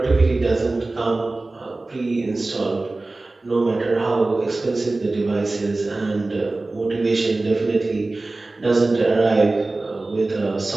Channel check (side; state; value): left; quieter; 3.1 dB